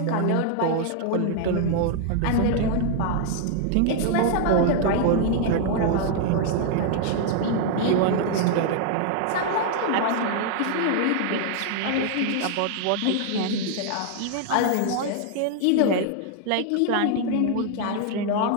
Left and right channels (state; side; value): different; both; correlation 0.00